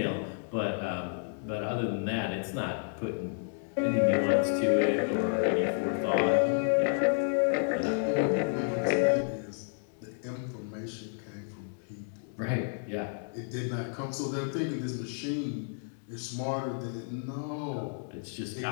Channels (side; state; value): right; silent; digital silence